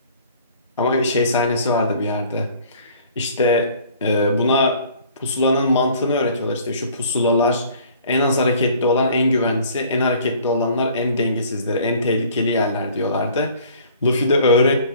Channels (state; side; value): inverted; both; correlation -0.52